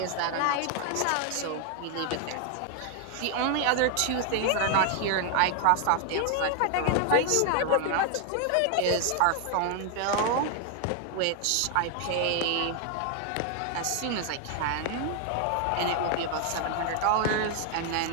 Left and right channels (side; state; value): both; different; correlation 0.00